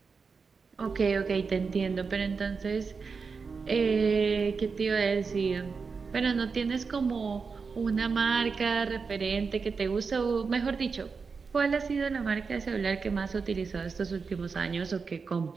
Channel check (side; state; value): left; quieter; 5.1 dB